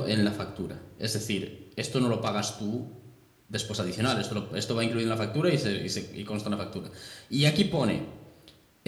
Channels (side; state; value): both; identical; correlation 1.00